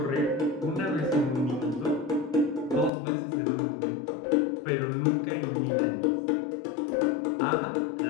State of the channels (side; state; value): right; drops out; at 2.9 s